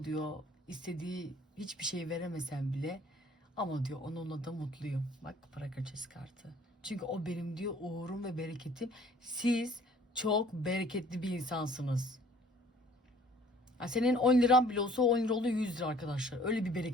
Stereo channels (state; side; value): normal; both; correlation 0.55